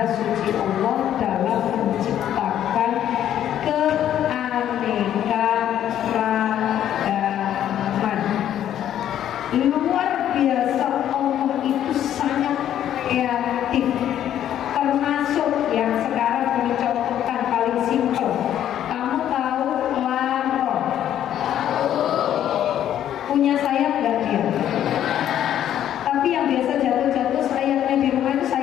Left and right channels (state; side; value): quieter; right; 10.9 dB